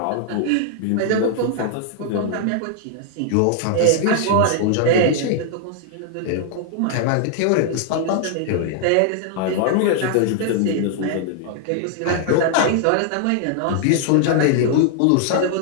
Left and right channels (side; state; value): both; different; correlation -0.01